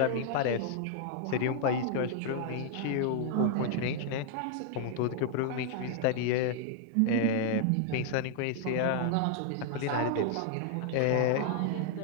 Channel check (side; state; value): both; different; correlation -0.01